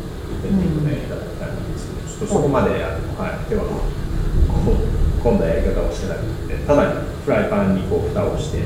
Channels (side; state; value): both; identical; correlation 1.00